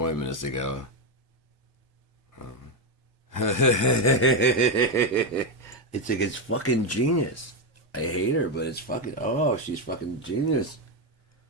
as they go. It's like, it's fucking genius. I hate her, but it's fucking, oh, she's fucking genius.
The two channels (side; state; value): both; normal; correlation 0.07